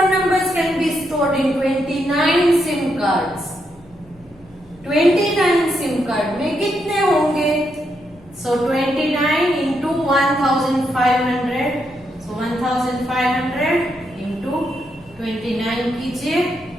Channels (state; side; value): noise; right; hum, 28 dB below the sound